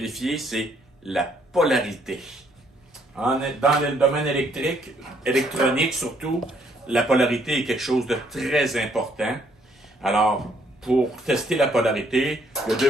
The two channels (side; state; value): both; normal; correlation 0.68